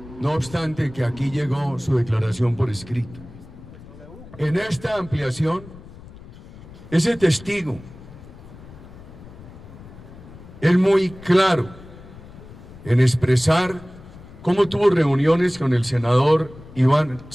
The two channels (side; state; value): left; noise; rumble, 18 dB below the sound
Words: no obstante que aquí llegó su declaración por escrito. En esta ampliación, ese testigo es muy claro en expresar cómo tuvo reuniones con el senador Iván